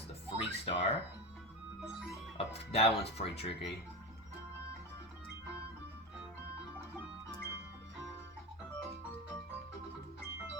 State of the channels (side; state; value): both; normal; correlation 0.20